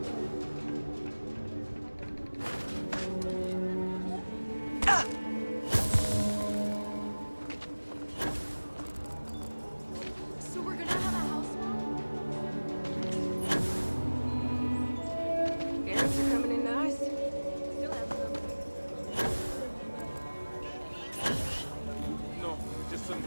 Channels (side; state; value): both; inverted; correlation -1.00